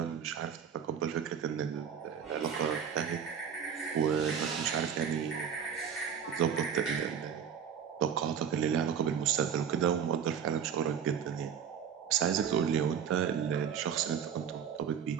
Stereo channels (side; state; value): left; quieter; 7.8 dB